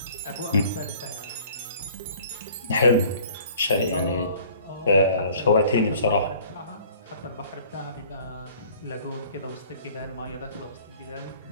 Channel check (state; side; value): inverted; both; correlation -0.52